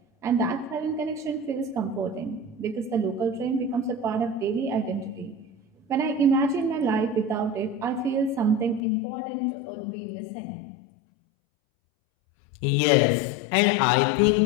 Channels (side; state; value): right; drops out; at 8.8 s